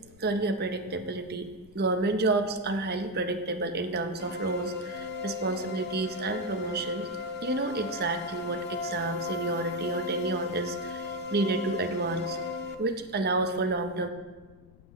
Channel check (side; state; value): left; noise; rumble, 23 dB below the sound